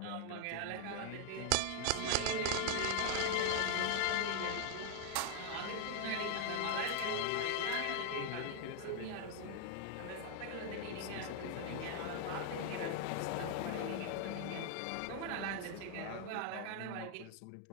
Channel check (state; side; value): different; both; correlation 0.00